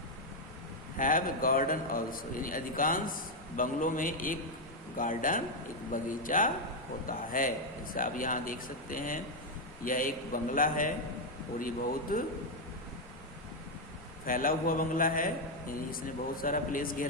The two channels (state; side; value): normal; both; correlation 0.02